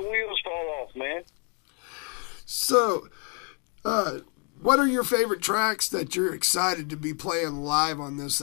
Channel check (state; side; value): quieter; right; 38.2 dB